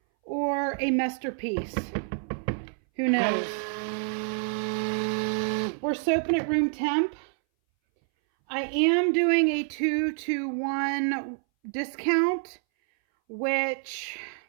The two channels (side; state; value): left; silent; 60 dB below the other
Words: or a masterpiece. Who knows? We're soaping at room temp. I am doing a 2-to-1 discount, which